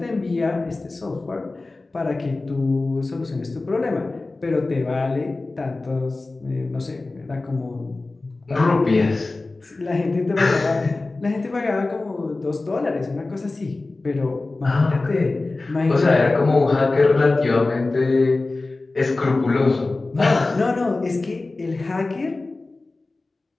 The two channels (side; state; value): right; quieter; 3.3 dB